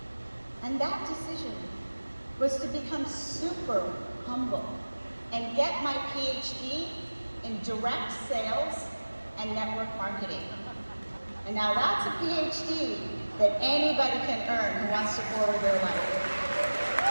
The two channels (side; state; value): both; inverted; correlation -1.00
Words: and that decision was to become super humble and get my PhD in direct sales and network marketing. And now that's a PhD that anybody can earn who wants to forward their life.